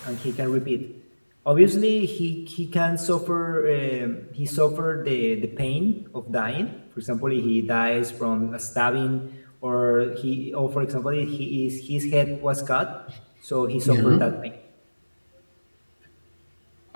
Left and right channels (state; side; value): inverted; both; correlation -1.00